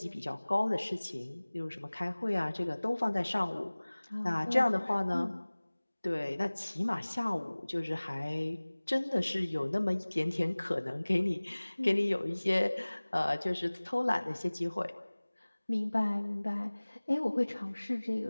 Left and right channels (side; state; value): both; inverted; correlation -1.00